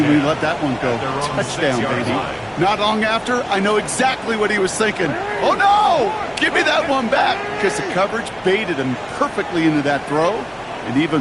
when he let that one go. Touchdown, baby. Not long after, I know exactly what he was thinking. Oh, no! Give me that one back! Because the coverage baited him perfectly into that throw, and even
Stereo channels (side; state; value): both; identical; correlation 1.00